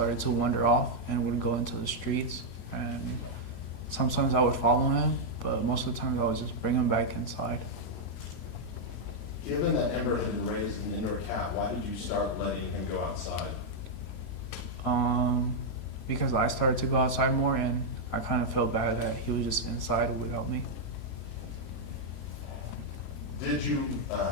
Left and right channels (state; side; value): late; right; 3.0 ms